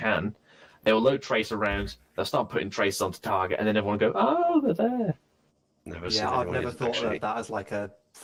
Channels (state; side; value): identical; both; correlation 1.00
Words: they will load tracer rounds, they'll start putting tracers onto target, and then everyone will go, oh, they're there. I've never thought of that as like a